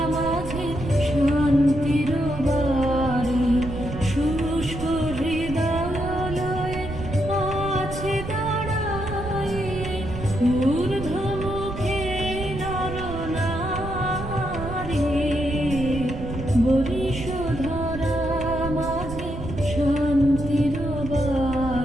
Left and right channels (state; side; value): noise; right; rumble, 8 dB below the sound